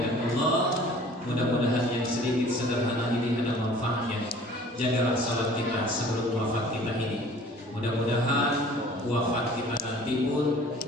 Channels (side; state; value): both; normal; correlation 0.49